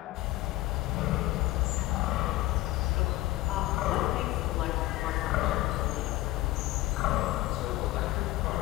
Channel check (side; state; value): right; quieter; 17.8 dB